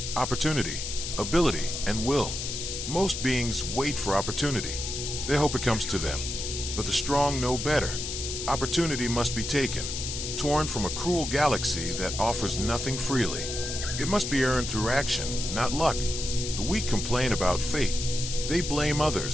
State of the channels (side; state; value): left; noise; hiss, 5 dB below the sound